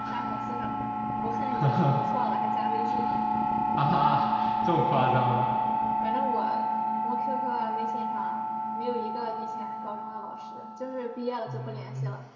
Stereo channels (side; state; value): both; identical; correlation 1.00